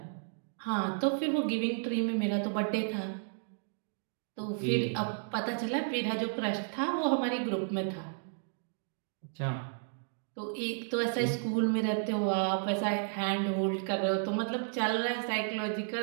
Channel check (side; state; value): left; silent; digital silence